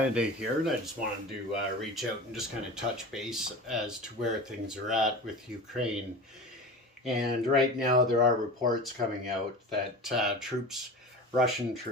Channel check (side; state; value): both; normal; correlation 0.33